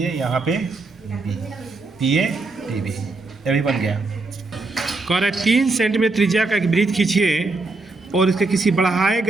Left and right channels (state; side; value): quieter; left; 3.5 dB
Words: यहाँ पे B, P A T B, ये भी बन गया। कह रहे 3 सेंटीमीटर त्रिज्या का एक वृत्त खींचिए और इसके किसी बढ़ाए